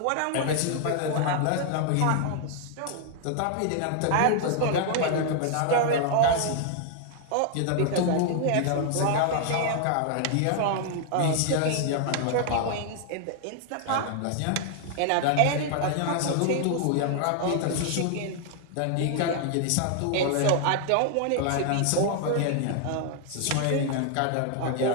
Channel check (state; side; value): different; both; correlation 0.00